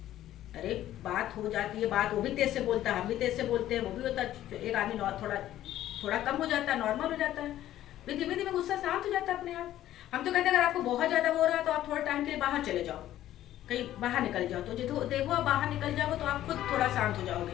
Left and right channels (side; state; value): right; quieter; 13.1 dB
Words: अरे बात हो जाती है, बात वो भी तेज से बोलता है, हम भी तेज से बोलते हैं, वो भी होता है। एक आदमी थोड़ा कम हो जाता है, नॉर्मल हो जाता है, फिर धीमे धीमे गुस्सा शांत हो जाता है अपने आप। हम तो कहते हैं अगर आपको बहुत ज़्यादा हो रहा है तो आप थोड़ा टाइम के लिए बाहर चले जाओ, कहीं बाहर निकल जाओ। तो देखो आप बाहर निकल जाओगे तो आप खुद थोड़ा शांत हो